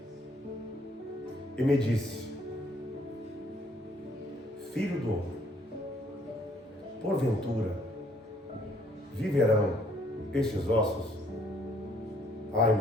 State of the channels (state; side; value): normal; both; correlation 0.64